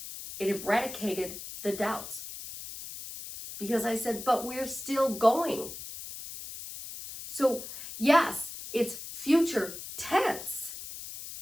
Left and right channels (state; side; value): noise; left; hiss, 10 dB below the sound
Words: it eradicated the doubts. Because I said, but we're still going. So yes, it's future tense,